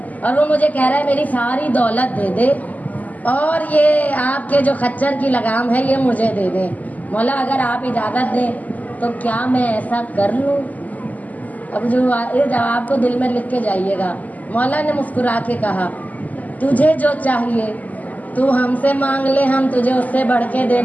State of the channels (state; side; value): late; right; 0.077 ms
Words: और वो मुझे कह रहा है मेरी सारी दौलत दे दे और ये आपके जो खच्चर की लगाम है ये मुझे दे दे। मौला अगर आप इजाज़त दें तो क्या मैं ऐसा कर लूँ? अब जो ये जवाब को दिल में लिख के जाइएगा। मौला ने मुस्कुरा के कहा, तुझे जो चाहिए तू हमसे मांग ले, हम तुझे उससे बढ़ के